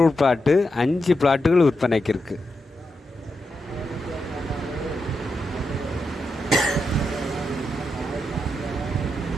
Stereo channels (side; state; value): both; normal; correlation 0.86